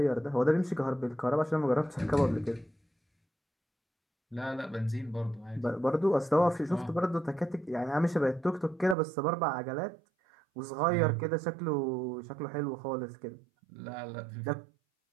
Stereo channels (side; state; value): left; drops out; at 9.0 s